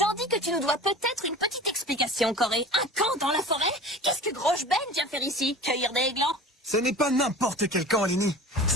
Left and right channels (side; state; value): both; normal; correlation 0.38